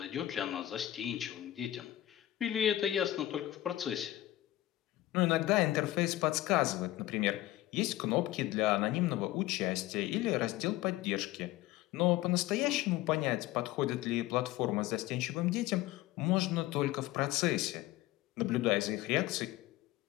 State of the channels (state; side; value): quieter; right; 15.4 dB